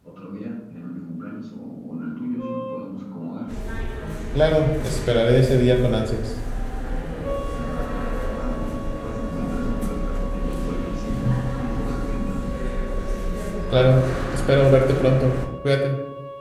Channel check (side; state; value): both; identical; correlation 1.00